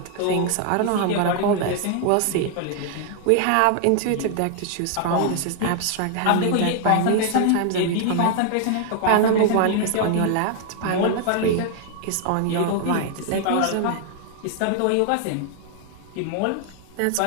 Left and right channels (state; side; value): different; both; correlation 0.00